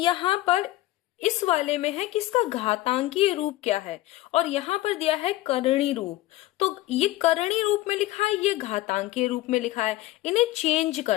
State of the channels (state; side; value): quieter; right; 16.7 dB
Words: पर इस वाले में है कि इसका घातांकीय रूप क्या है और यहाँ पर दिया है करणी रूप। तो ये करणी रूप में लिखा है, ये घातांकीय रूप में लिखा है, इन्हें चेंज